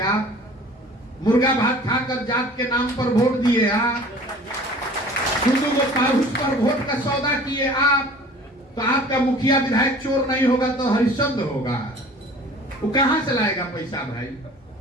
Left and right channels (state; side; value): normal; both; correlation 0.46